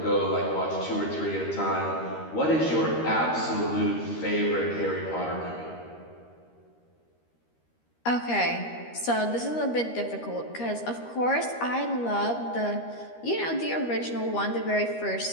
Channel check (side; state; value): right; late; 13 ms